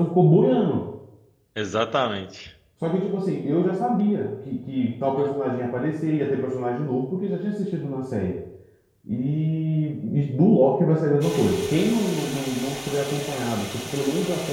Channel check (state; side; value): identical; both; correlation 1.00